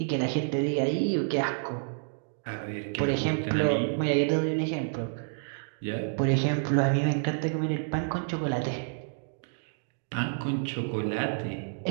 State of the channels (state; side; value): silent; left; digital silence